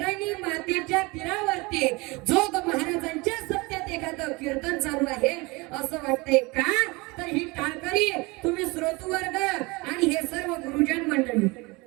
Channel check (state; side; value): quieter; left; 25.1 dB